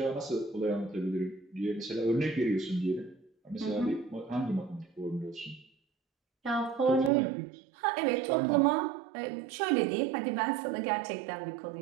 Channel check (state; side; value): drops out; left; at 7.1 s